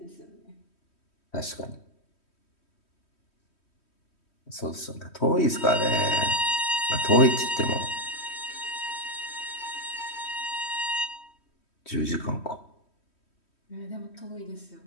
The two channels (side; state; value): right; late; 3.1 ms